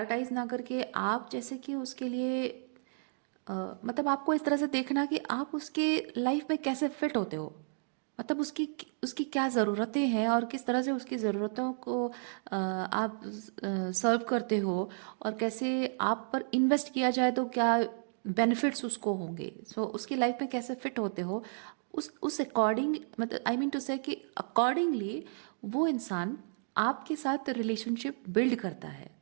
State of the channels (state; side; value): silent; left; digital silence